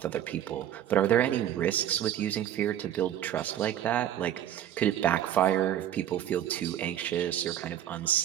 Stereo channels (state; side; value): quieter; left; 11.1 dB